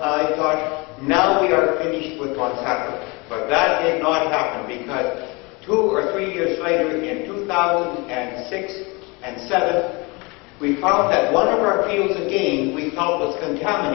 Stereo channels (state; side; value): quieter; right; 27.2 dB